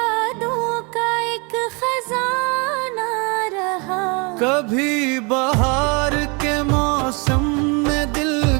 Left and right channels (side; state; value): left; quieter; 31.3 dB